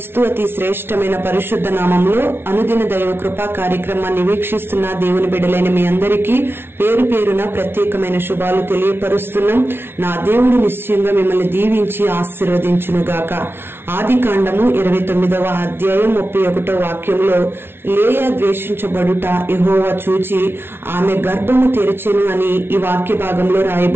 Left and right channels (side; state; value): left; late; 0.11 ms